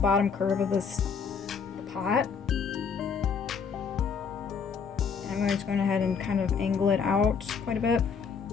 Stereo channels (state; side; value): quieter; right; 6.0 dB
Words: curve of the pot. And I'm going to go ahead and kind of angle it out quite a bit.